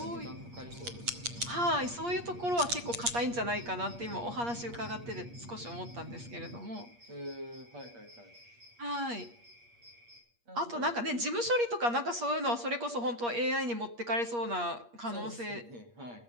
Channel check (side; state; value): left; late; 8.5 ms